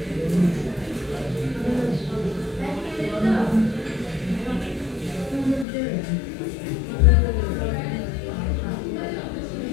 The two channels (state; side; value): drops out; right; at 5.7 s